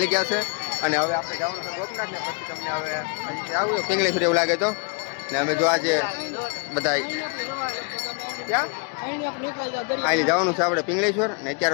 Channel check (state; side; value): quieter; right; 34.6 dB